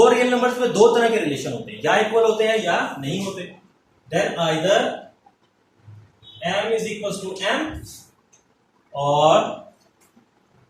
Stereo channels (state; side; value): identical; both; correlation 1.00